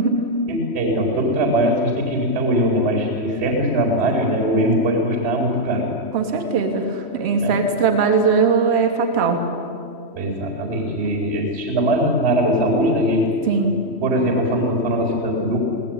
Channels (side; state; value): left; late; 3.1 ms